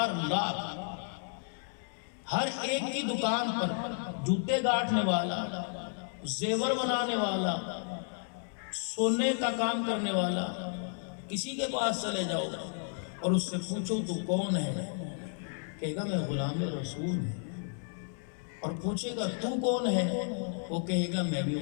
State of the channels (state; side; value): silent; right; 56 dB below the other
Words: لاکھ، ہر ایک کی دکان پر جوتے گاٹنے والا، زیور بنانے والا، سونے کا کام کرنے والا، کسی کے پاس چلے جاؤ اور اس سے پوچھو تو کون ہے، کہے گا میں غلام رسول ہوں۔ اور پوچھے گا تو کون ہے، وہ کہے گا میں بھی